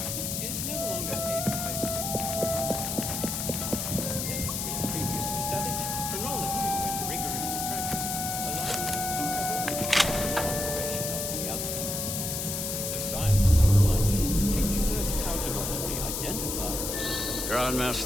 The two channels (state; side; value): noise; left; hiss, 2 dB below the sound